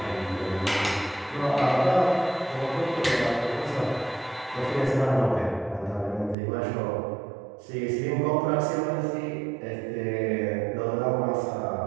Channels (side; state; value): left; drops out; at 6.4 s